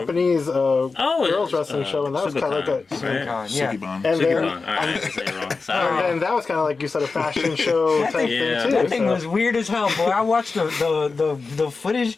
girls wrestling show, and that was kind of like a Sukiban. And that was kind of like you said, a fashion show type thing too. That thing was weird as hell, boy. I watched the footage.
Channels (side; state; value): right; quieter; 4.3 dB